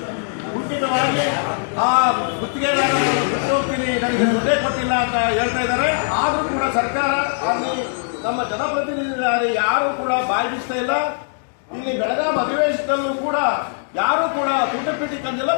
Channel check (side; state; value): right; silent; digital silence